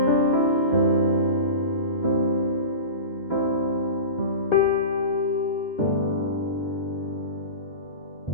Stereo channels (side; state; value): right; late; 2.2 ms